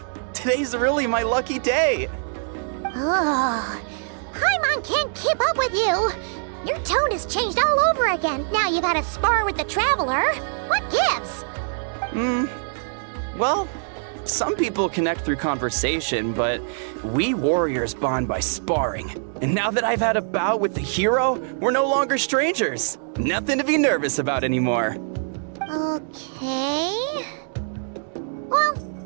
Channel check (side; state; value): left; silent; digital silence